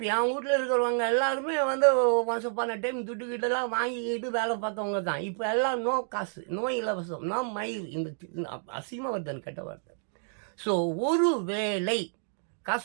என் வீட்டில் இருக்கிறவங்க எல்லாருமே வந்து ஒன்ஸ் அப்பான டைம் துட்டுக்கிட்டெல்லாம் வாங்கிக்கிட்டு வேலை பார்த்தவங்க தான். இப்போ எல்லாம் நோ காசு, நோ இலவசம், நோ மயில். இந்த அசிங்கமாக வருதுன்னு கெட்ட வார்த்தை. ஸோ ஒரு வேளை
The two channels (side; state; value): left; silent; digital silence